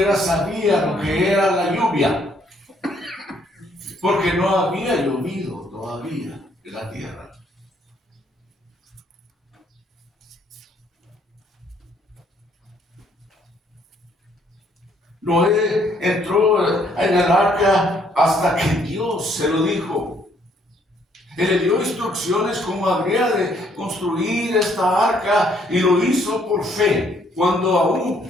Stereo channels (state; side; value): normal; both; correlation 0.67